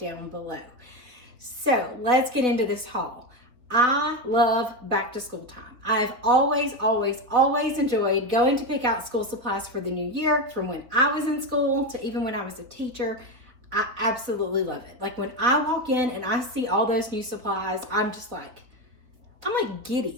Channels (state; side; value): late; left; 4.1 ms